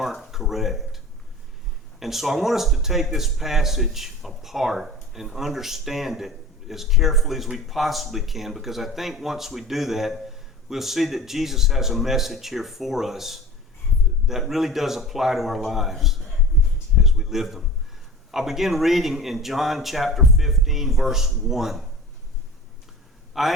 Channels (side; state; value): both; normal; correlation 0.38